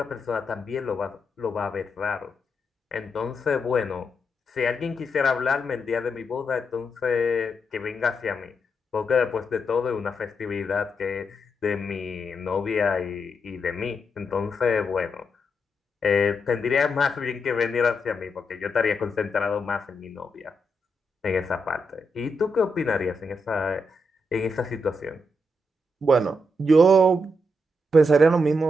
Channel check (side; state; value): both; normal; correlation 0.82